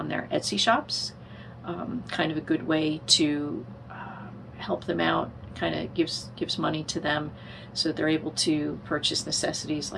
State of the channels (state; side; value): identical; both; correlation 1.00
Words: their Etsy shops. Kind of a good way to help them out, kind of gives money to them so that they're able to purchase necessities